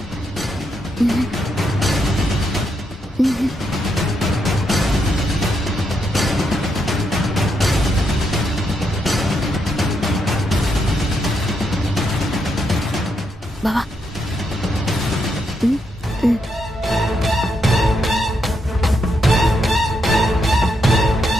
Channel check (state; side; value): normal; both; correlation 0.80